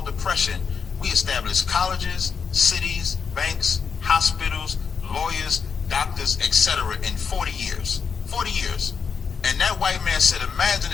depression, we established colleges, cities, banks, hospitals, lawyers, doctors, etc. in 40 years. 40 years. And that white man said, imagine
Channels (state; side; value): quieter; right; 6.1 dB